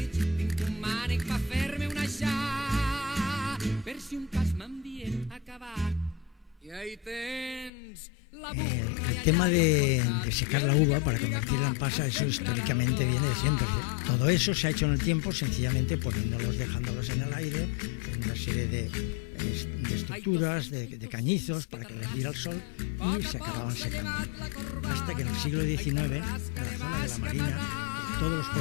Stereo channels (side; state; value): right; drops out; at 7.7 s